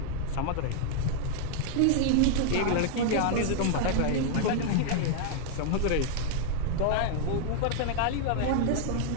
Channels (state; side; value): different; both; correlation 0.00